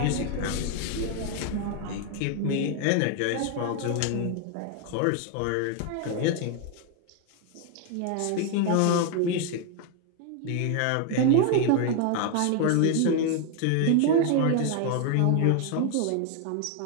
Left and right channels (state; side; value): different; both; correlation 0.01